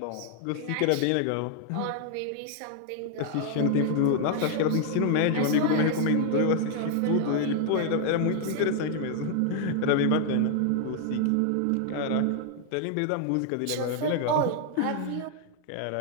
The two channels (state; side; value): different; both; correlation 0.00